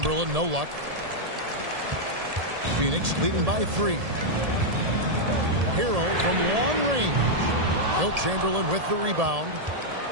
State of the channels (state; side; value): late; left; 1.7 ms